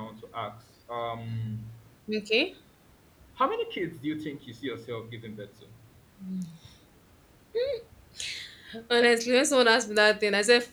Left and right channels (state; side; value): identical; both; correlation 1.00